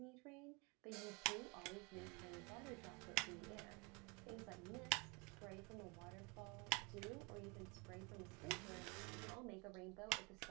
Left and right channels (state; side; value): quieter; left; 28.3 dB